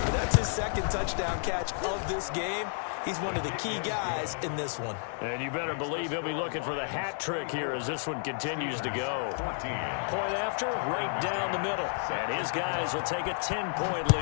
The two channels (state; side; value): silent; right; digital silence